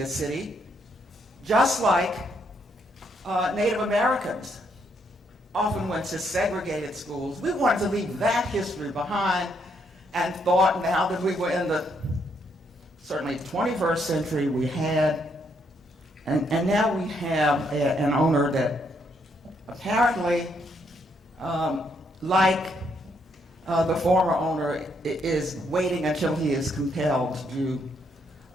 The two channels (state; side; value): normal; both; correlation 0.74